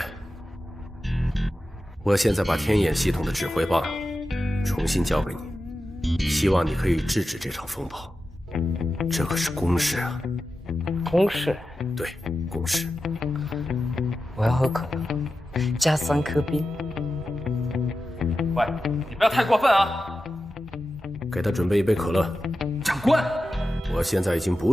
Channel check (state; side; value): normal; both; correlation 0.92